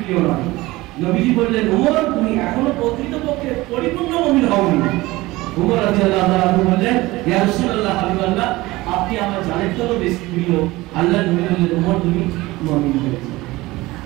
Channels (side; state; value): left; quieter; 19.7 dB